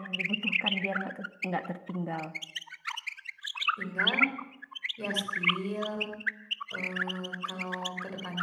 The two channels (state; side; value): identical; both; correlation 1.00